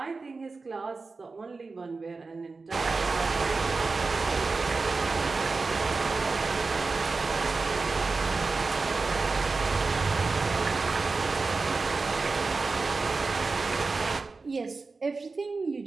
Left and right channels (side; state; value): left; quieter; 4.0 dB